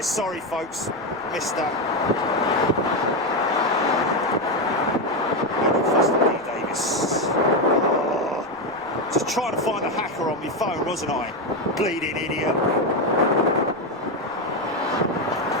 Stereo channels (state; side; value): noise; left; rumble, 29 dB below the sound